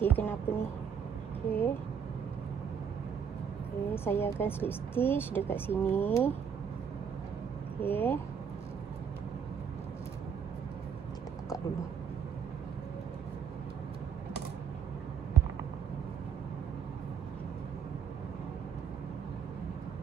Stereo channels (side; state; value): left; quieter; 7.3 dB